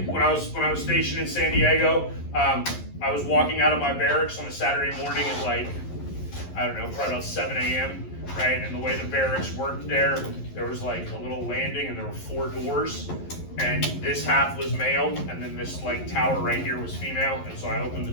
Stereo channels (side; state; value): right; late; 11 ms